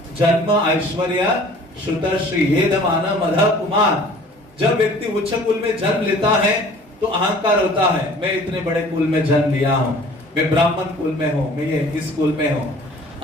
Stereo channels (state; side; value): normal; both; correlation 0.49